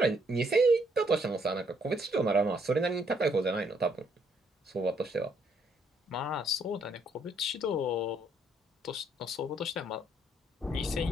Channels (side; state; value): both; normal; correlation 0.70